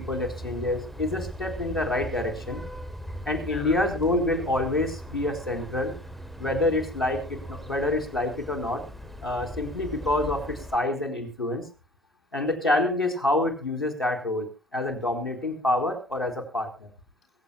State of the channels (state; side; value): normal; both; correlation 0.45